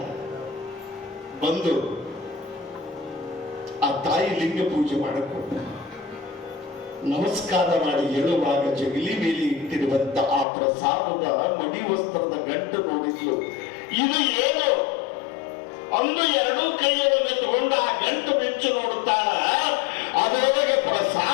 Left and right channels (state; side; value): drops out; right; at 10.5 s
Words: ಬಂದು ಆ ತಾಯಿ ಲಿಂಗ ಪೂಜೆ ಮಾಡಿಕೊಂಡು ನಮಸ್ಕಾರ ಮಾಡಿ ಹೇಳುವಾಗ ಜಗಲಿ ಮೇಲೆ ಇಟ್ಟಿರುವಂತ ಆ ಪ್ರಸಾದದ ಮಡಿ ವಸ್ತ್ರದ ಗಂಟು ನೋಡಿದ್ಲು. ಇದು ಏನು ಅಂದು 2 ಕೈಯೊಳಗೆ ತಗೊಂಡು ಆ ಗಂಟು ಬೆಚ್ಚು ನೋಡುತ್ತಾಳ. ಅದರೊಳಗೆ